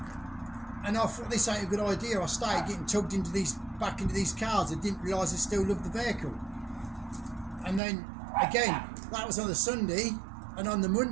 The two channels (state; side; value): drops out; left; at 7.8 s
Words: I thought this ain't a good idea. I started getting tugged back into these cars. I didn't realise I still loved the vehicle. And then again, that was on the Sunday, and on the